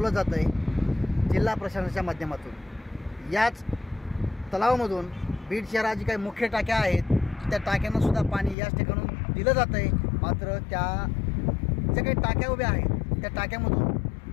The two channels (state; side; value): drops out; right; at 8.6 s